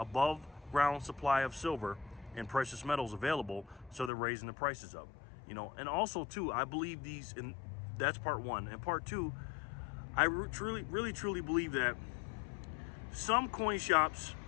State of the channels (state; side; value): drops out; right; at 4.1 s